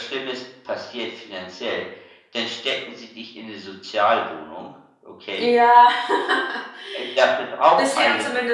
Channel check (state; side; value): identical; both; correlation 1.00